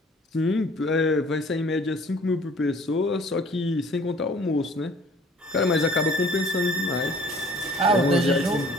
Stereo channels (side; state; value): both; normal; correlation 0.53